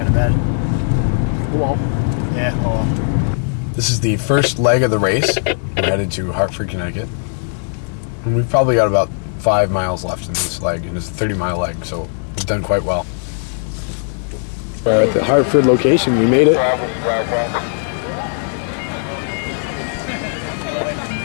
of bad. Well. Yeah, oh well. This is the first leg of the race. We're headed to Hartford, Connecticut. And we've probably got about 5 miles left in this leg, and it's a 30-mile leg, so we've done quite well. We're at the Hartford location. We made it.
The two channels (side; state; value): right; silent; 66 dB below the other